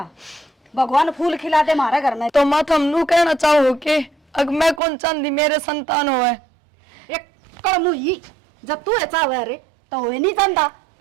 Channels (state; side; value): drops out; left; at 4.8 s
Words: भगवान फूल खिला दे हमारे घर में। तो माँ तुम नू कहना चाहो कि अग मैं कौन चांदी मेरे संतान हो है एक कड़मू ही जब तू ऐसा हुआ रे तो हो नहीं जानता